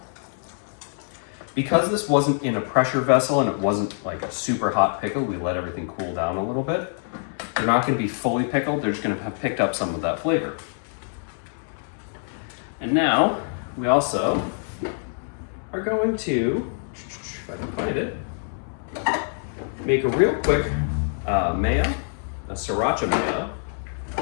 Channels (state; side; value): silent; right; 62 dB below the other